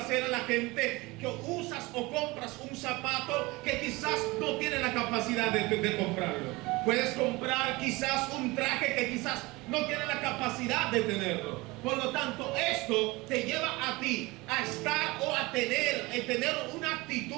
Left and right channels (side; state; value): left; quieter; 22.6 dB